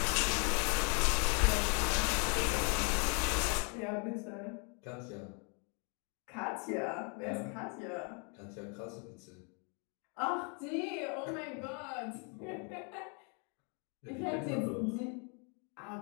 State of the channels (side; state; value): right; quieter; 37.0 dB